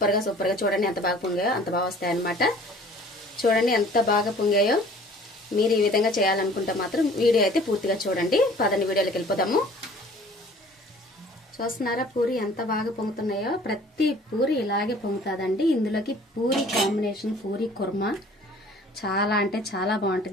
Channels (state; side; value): normal; both; correlation 0.51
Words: గా చూడండి. ఎంత బాగా పొంగాయో అంత బాగా వస్తాయి అనమాట. చూడండి ఎంత బాగా పొంగాయో. మీరు ఈ విధంగా చేయాలనుకుంటే మాత్రం వీడియో అయితే పూర్తిగా చూడండి. పదండి వీడియోలోకి వెళ్ళిపోదాము. చూస్తున్నారా పూరి ఎంత బాగా పొంగుతున్నాయో? ప్రతి పూరి ఇలాగే పొంగుతుందండి. ఇందులోకి పూరి కాంబినేషన్ పూరి కుర్మా చాలా అంటే చాలా